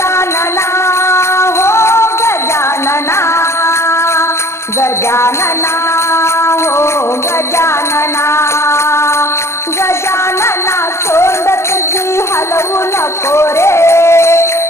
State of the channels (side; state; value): right; late; 0.13 ms